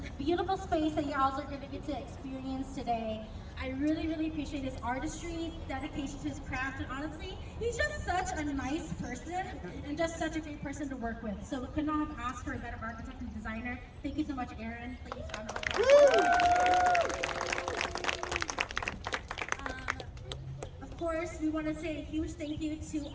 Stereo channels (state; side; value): identical; both; correlation 1.00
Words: beautiful space that you all are going to get to experience today. I really, really appreciate his artistry, dedication to his craft, and honestly, he's just such a nice person and just such a great person to work with. So we could not have asked for a better architect and designer. Thank you so much, Erin. Please round of applause. Of course, we want to say a huge thank you to